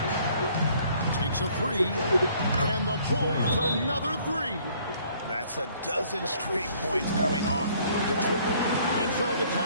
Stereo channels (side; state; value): both; inverted; correlation -0.60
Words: Takes a 3. And the Bulls another 3. That's a dozen straight points coming off the triple. And so the